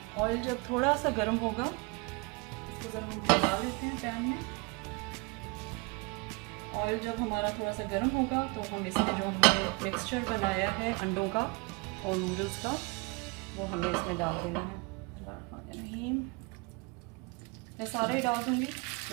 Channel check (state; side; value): quieter; left; 28.3 dB